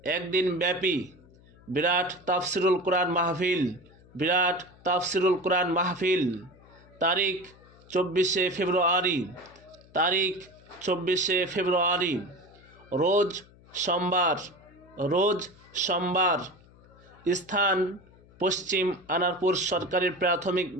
একদিন ব্যাপী বিরাট তাফসিরুল কোরআন মাহফিল তারিখ 24শে ফেব্রুয়ারি রোজ সোমবার। স্থান পশ্চিম আনারপুর সরকারি প্রাথমিক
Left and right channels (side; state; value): left; noise; hum, 26 dB below the sound